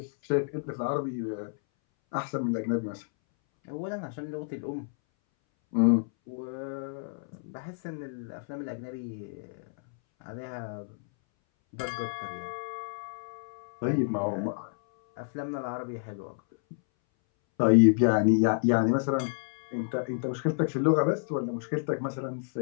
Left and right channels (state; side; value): silent; right; 58 dB below the other